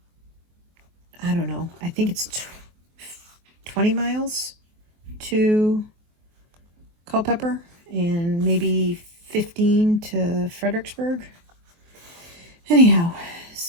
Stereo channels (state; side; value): late; left; 23 ms